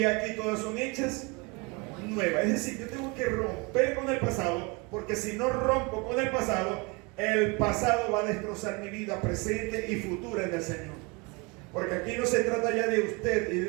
aquí todas son hechas nuevas. Es decir, yo tengo que romper con el pasado, porque si no rompo con el pasado va a destrozar mi vida presente y futura en el Señor. Porque aquí no se trata ya de usted y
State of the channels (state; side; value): quieter; left; 28.1 dB